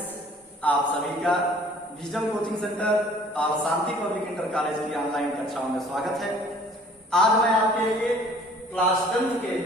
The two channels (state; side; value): normal; both; correlation 0.53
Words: आप सभी का विजडम कोचिंग सेंटर और शांति पब्लिक इंटर कॉलेज की ऑनलाइन कक्षाओं में स्वागत है। आज मैं आपके लिए क्लास 10 के